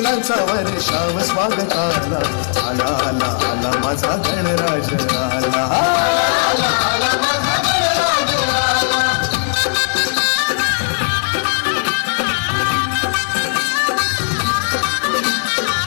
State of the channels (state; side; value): silent; right; 57 dB below the other